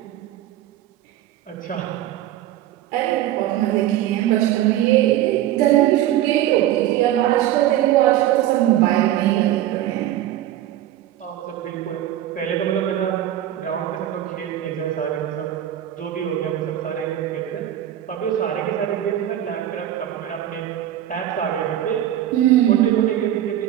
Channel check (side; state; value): left; quieter; 12.6 dB